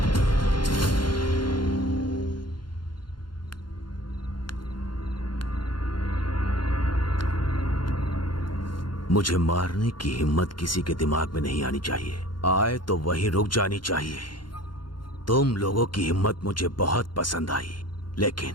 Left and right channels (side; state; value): right; late; 0.72 ms